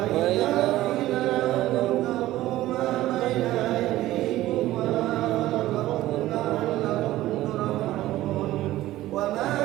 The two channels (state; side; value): quieter; left; 15.6 dB